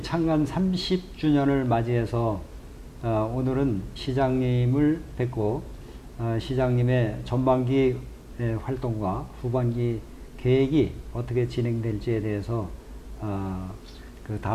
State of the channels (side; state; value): both; identical; correlation 1.00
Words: 창간 30주년을 맞이해서 오늘은 시장님을 뵙고 시장님의 전반기 활동과 후반기 계획이 어떻게 진행될지에 대해서 그